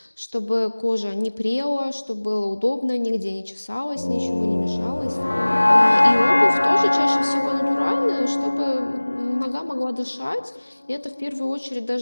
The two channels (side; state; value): both; inverted; correlation -1.00